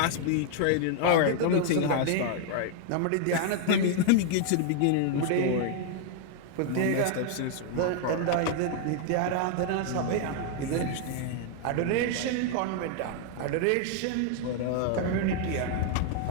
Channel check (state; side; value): different; both; correlation 0.00